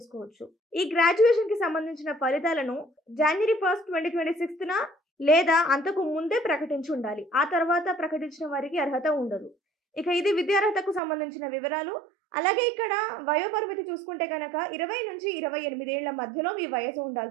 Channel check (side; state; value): left; drops out; at 11.0 s